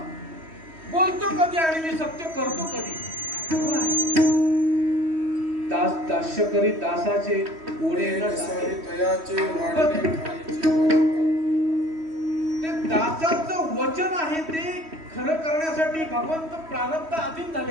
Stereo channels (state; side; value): late; left; 3.1 ms